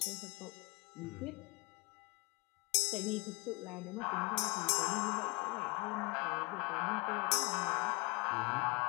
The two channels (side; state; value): right; quieter; 27.1 dB